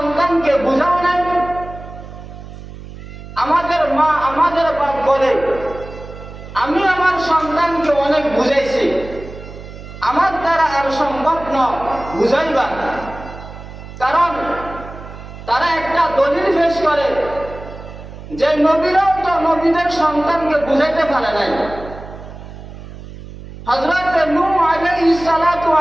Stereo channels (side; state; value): right; noise; hum, 14 dB below the sound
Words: বুঝাও নাই? আমাদের মা, আমাদের বাপ বলে, আমি আমার সন্তানকে অনেক বুঝাইছি, আমার দ্বারা আর সম্ভব নয় বুঝাইবার। কারণ তারা একটা দলিল পেশ করে যে নবীরাও তো নবীদের সন্তানকে বুঝাইতে পারে নাই। হযরত নূহ আলাইহিস সালাতু